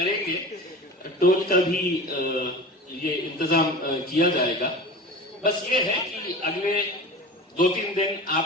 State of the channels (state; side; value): normal; both; correlation 0.35